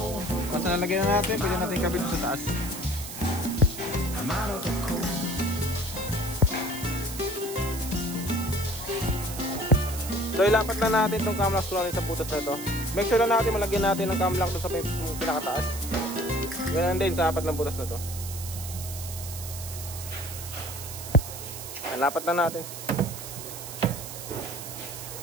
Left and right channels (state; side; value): noise; right; hiss, 10 dB below the sound